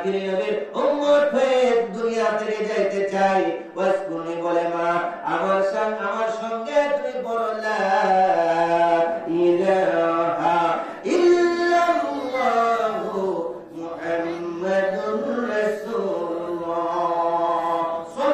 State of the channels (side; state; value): both; identical; correlation 1.00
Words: নবীর উম্মত হয়ে দুনিয়া থেকে যাইতে চাই। ওয়াইস করণী বলে, মা আমার সঙ্গে তুমি বলো লা ইলাহা ইল্লাল্লাহু মুহাম্মাদুর রাসূলুল্লাহ